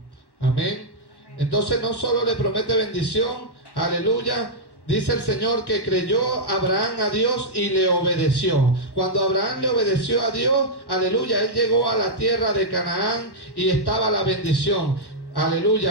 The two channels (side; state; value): right; late; 1.1 ms